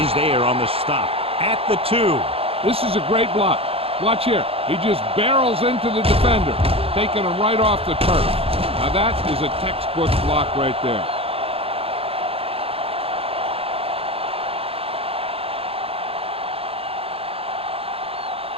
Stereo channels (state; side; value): late; left; 0.28 ms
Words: is there on the stop at the 2. This is a great block. Watch here. He just barrels into the defender, taking him right off the turf. Now that is a textbook block right there.